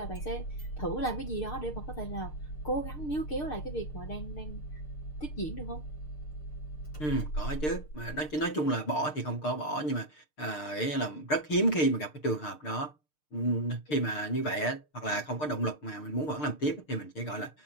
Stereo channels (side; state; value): right; late; 6.6 ms